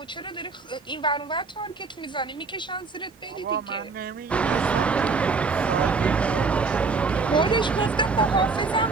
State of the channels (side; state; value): left; quieter; 4.3 dB